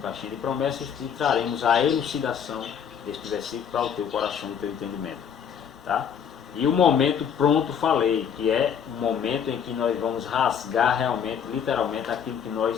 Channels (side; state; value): right; quieter; 7.9 dB